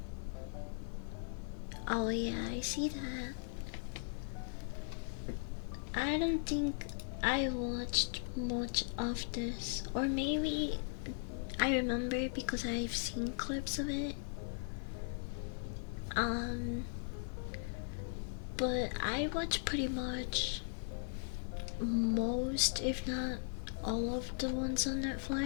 Oh yeah, I see that. I don't think I watched much of this, or maybe I remember because I've seen clips of it. But I watch pretty much most, if not all of the ones on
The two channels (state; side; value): silent; right; digital silence